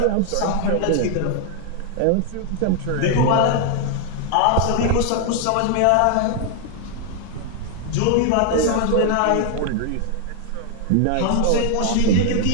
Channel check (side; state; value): both; different; correlation 0.00